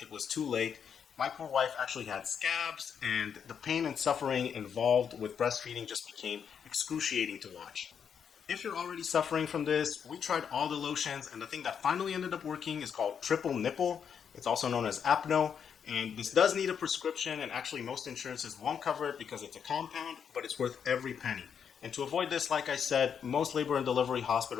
it was too late. My poor wife actually had scabs, and the pain and suffering involved with breastfeeding just became excruciating to watch. If you're already suffering from this, we tried all the lotions, and the thing that finally ended up working is called triple nipple. It's also known as Apno, and this does need a prescription, and actually most insurances won't cover it because it's a compound, but it's worth every penny. And to avoid this, like I said, most labor and delivery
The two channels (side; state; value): right; quieter; 7.5 dB